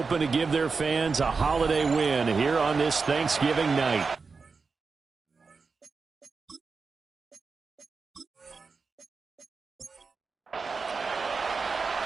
to give their fans a holiday win here on this Thanksgiving night.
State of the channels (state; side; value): quieter; left; 4.7 dB